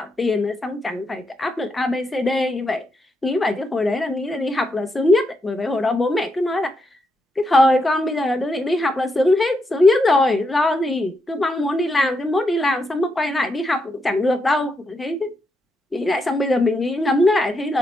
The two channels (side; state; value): both; normal; correlation 0.82